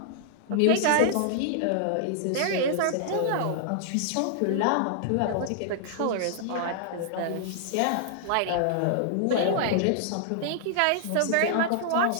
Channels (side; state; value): both; different; correlation -0.01